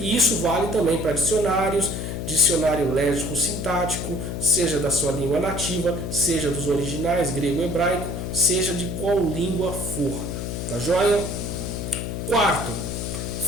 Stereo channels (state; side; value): noise; left; hum, 4 dB below the sound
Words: isso vale também para dicionários, dicionário léxico-sintático, seja da sua língua nativa, seja dos originais, grego e hebraico, seja de qual língua for. Tá joia? Quarto,